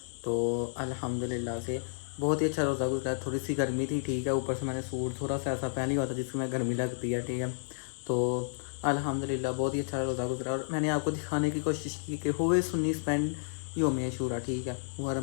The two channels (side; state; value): right; silent; digital silence